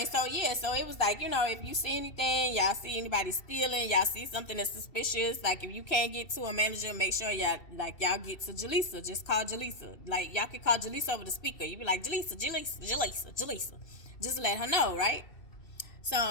so yeah, so it was like, you know, if you see anything, y'all see anybody stealing, y'all see something that's suspicious, like, if you can't get to a manager, make sure y'all get to Jaleesa. Just call Jaleesa. Like, y'all can call Jaleesa over the speaker. You be like, Jaleesa. Just let her know, right?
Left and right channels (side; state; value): right; late; 2.7 ms